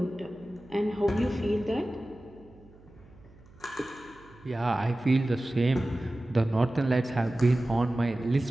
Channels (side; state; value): right; noise; hum, 25 dB below the sound